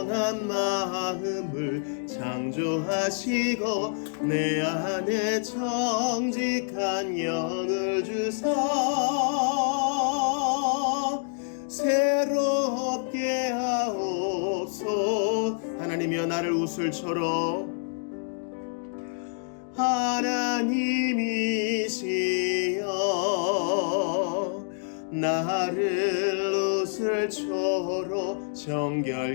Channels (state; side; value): silent; right; digital silence